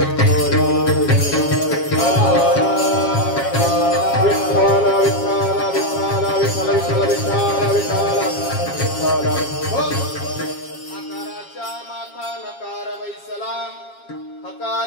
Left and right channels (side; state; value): right; late; 7.3 ms